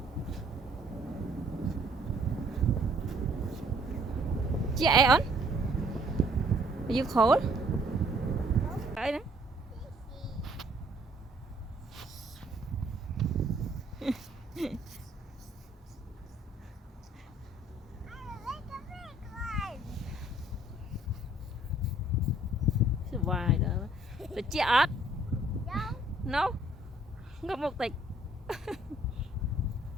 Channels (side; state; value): both; normal; correlation 0.61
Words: Chị on? Are you cold? Đấy đấy. Vài đó. Được chị ớt? No. Không có một tịch.